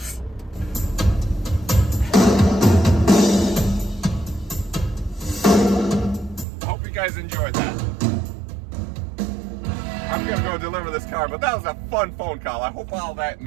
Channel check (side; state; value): left; drops out; at 6.5 s